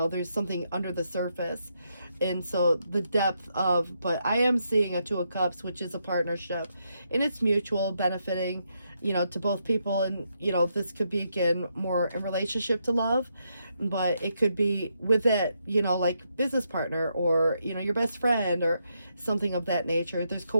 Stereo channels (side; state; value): both; inverted; correlation -0.80